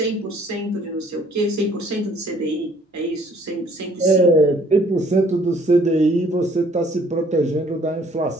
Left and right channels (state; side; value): normal; both; correlation 0.60